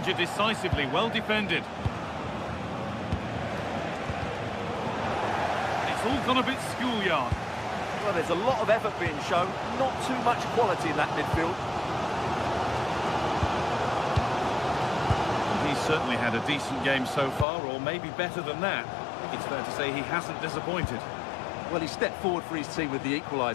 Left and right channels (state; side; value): drops out; right; at 17.4 s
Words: decisively. Well defended. It's all gone a bit schoolyard. Well, there's a lot of effort being shown, not too much quality in that midfield. He's certainly had a decent game so far, or maybe better than that. It's fair to say he hasn't disappointed. Well, he stepped forward for his team with the